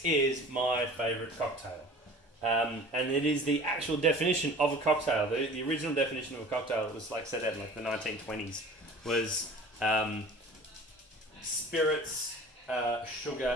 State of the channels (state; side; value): normal; both; correlation 0.43